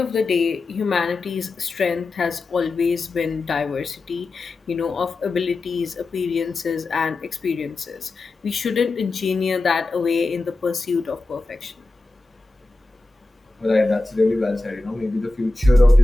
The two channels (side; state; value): right; quieter; 3.0 dB